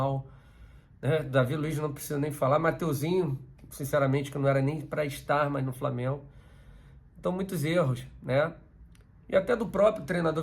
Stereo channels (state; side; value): identical; both; correlation 1.00